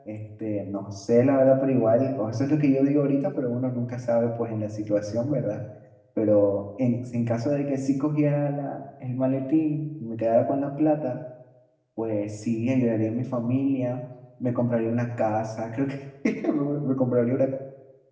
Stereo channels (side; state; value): both; identical; correlation 1.00